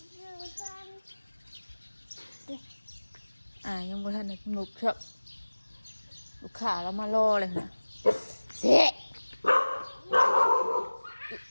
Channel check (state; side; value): inverted; both; correlation -1.00